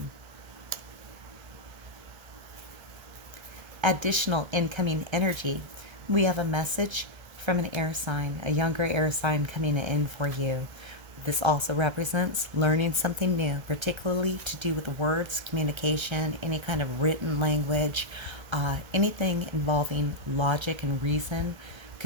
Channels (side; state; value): left; late; 1.3 ms